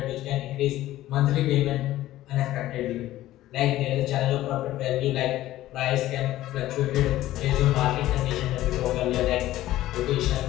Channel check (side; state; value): right; quieter; 14.9 dB